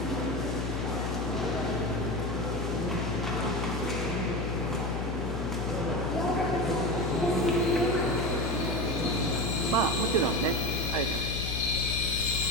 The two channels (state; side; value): noise; left; hum, 2 dB below the sound